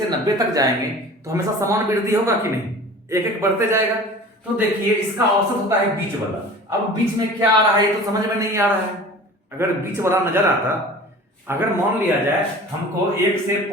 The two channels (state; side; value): normal; both; correlation 0.41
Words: 90 तक जाएंगे तो हमेशा समान वृद्धि होगा कि नहीं, एक एक बढ़ते जाएगा। तो देखिए इसका औसत होता है बीच वाला। अब बीच में क्या आ रहा है ये तो समझ में नहीं आ रहा है। अगर बीच वाला नजर आता, अगर मान लिया जाए हमको 1 से